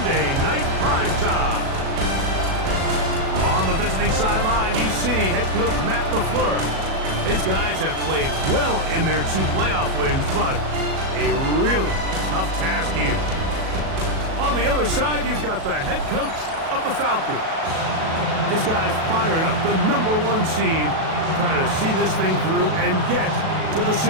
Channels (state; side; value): late; left; 37 ms